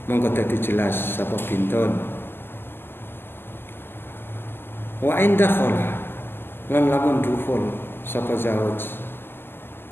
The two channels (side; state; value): right; late; 0.11 ms